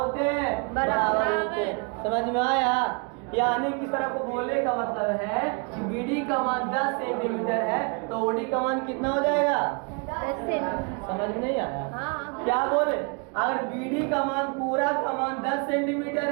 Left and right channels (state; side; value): quieter; left; 33.8 dB